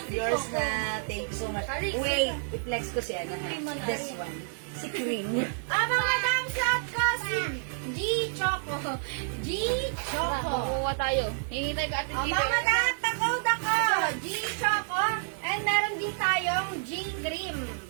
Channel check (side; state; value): left; silent; digital silence